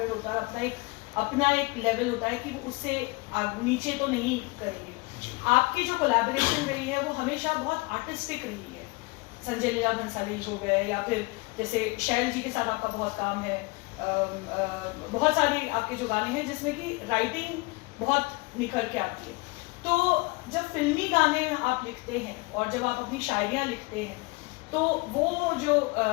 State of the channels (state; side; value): quieter; right; 27.3 dB